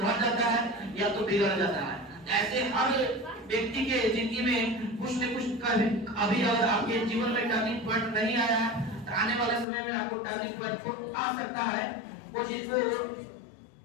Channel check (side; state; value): right; drops out; at 9.7 s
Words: जाता है या तो बिगड़ जाता है। ऐसे हर व्यक्ति के जिंदगी में कुछ न कुछ अभी अगर आपके जीवन में टर्निंग पॉइंट नहीं आया है तो आने वाले समय में आपको टर्निंग पॉइंट आ सकता है। वो चीज को